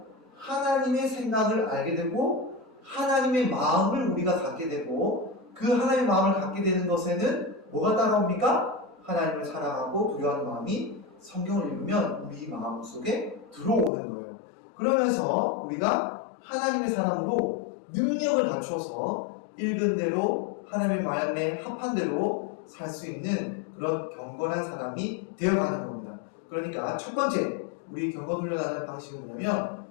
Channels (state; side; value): drops out; right; at 13.9 s